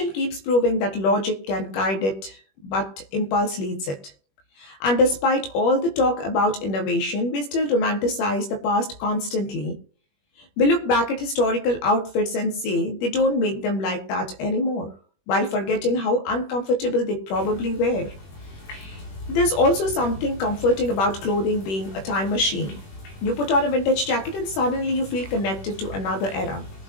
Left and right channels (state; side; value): late; right; 21 ms